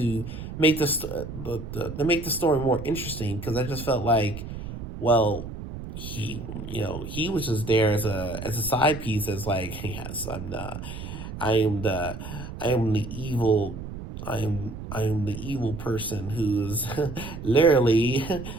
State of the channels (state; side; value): noise; right; rumble, 9 dB below the sound